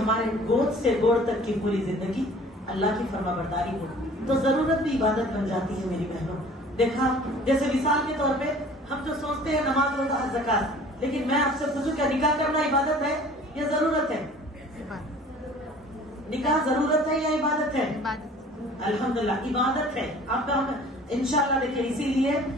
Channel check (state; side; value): normal; both; correlation 0.49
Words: گود سے گوڑ تک کی پوری زندگی اللہ کی فرما برداری ہو. تو ضرورت بھی عبادت بن جاتی ہے میری بہنوں. دیکھا جیسے مثال کے طور پہ ہم جو سوچتے ہیں نماز روزہ حج زکات، لیکن میں آپ سے پوچھوں کیا نکاح کرنا عبادت ہے یا ضرورت ہے؟ نکاح ضرورت ہے یا عبادت ہے؟ الحمدللہ عبادت ہے. آپ کا ہم انشاءاللہ دیکھیں، اسی لیے